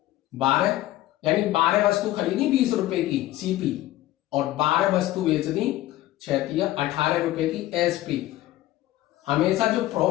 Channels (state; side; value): quieter; right; 15.5 dB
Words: 12, यानी 12 वस्तु खरीदी 20 रुपए की सीपी और 12 वस्तु बेच दी 6 तिया 18 रुपए की एसपी। हमेशा जो